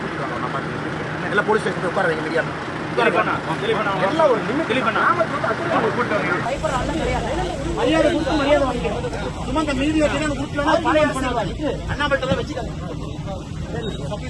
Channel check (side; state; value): both; identical; correlation 1.00